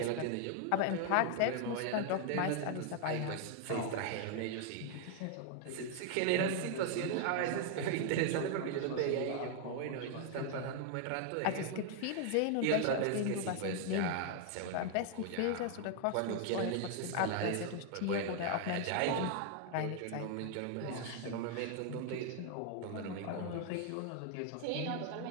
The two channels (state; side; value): different; both; correlation 0.00